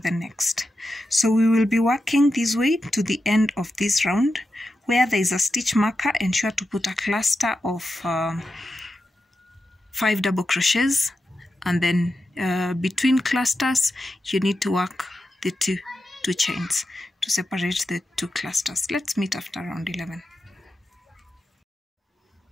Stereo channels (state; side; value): normal; both; correlation 0.90